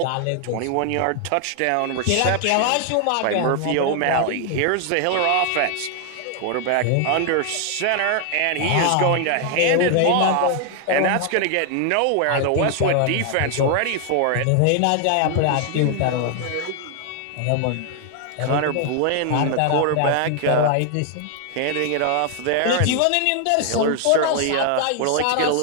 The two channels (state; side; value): different; both; correlation 0.00